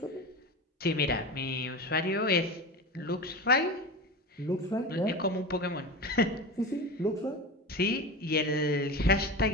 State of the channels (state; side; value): normal; both; correlation 0.27